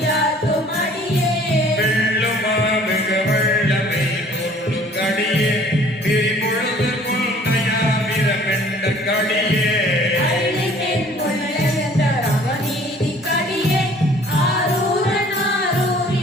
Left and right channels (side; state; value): both; normal; correlation 0.54